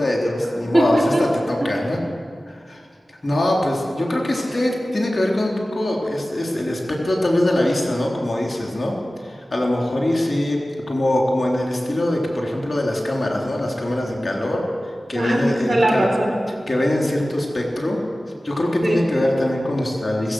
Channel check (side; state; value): both; normal; correlation 0.96